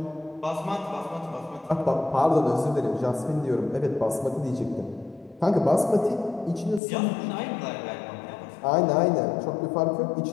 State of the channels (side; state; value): right; drops out; at 6.8 s